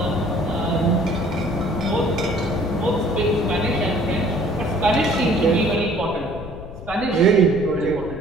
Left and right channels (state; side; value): noise; left; rumble, 12 dB below the sound